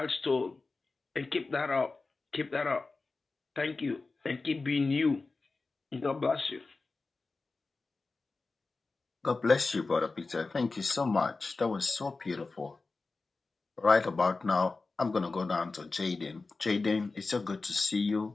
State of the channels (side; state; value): right; quieter; 3.8 dB